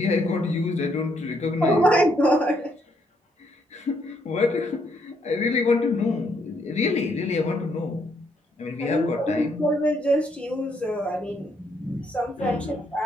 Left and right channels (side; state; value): both; normal; correlation 0.73